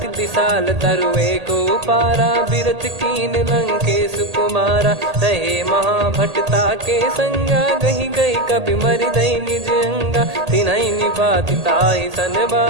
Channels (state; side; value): late; left; 1.8 ms